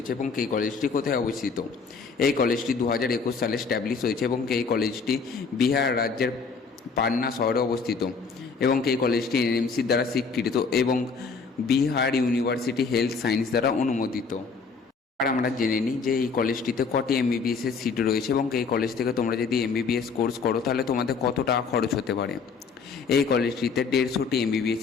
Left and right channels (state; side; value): quieter; right; 5.1 dB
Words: এবং এই কলেজটি কোথায় অবস্থিত। এই কলেজটি 2021 সালে স্ট্যাবলিশ হয়েছে এবং এই কলেজটি বিহার রাজ্যের পাটনা শহরে অবস্থিত এবং এই কলেজটি NMC দ্বারা স্বীকৃত এবং বিহার ইউনিভার্সিটি হেলথ সায়েন্স দ্বারা অনুমোদিত। আর আমরা জেনে নিই যে এই কলেজটিতে কটি MBBS এর সিট রয়েছে এবং এই কলেজ থেকে তোমরা যদি MBBS কোর্স করো তাহলে তোমাদের কত টাকা খরচ হতে পারে। এই কলেজটিতে 150টি MBBS